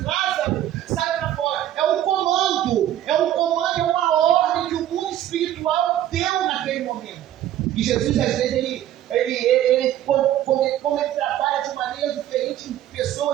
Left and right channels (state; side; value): quieter; left; 12.1 dB